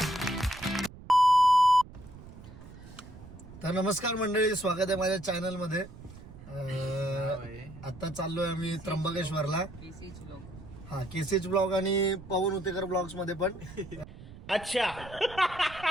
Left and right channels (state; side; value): noise; right; rumble, 17 dB below the sound